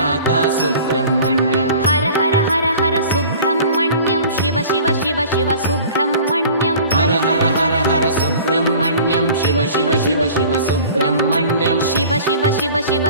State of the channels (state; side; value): inverted; both; correlation -0.45